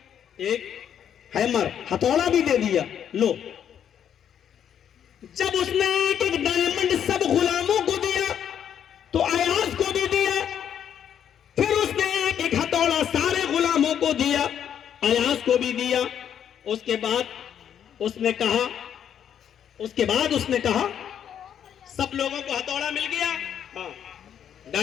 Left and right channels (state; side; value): quieter; right; 9.1 dB